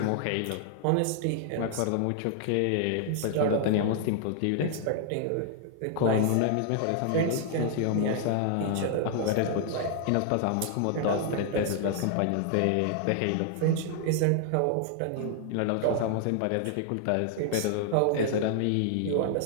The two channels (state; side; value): different; both; correlation 0.00